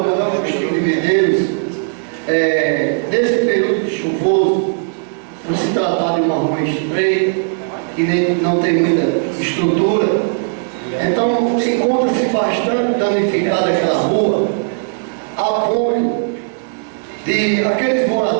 Agostinho de Medeiros, nesse período chuvoso, por se tratar de uma rua estreita, que não tem muita estrutura, então encontra-se bastante danificada aquela rua, a ponto de aqueles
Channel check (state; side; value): silent; left; 68 dB below the other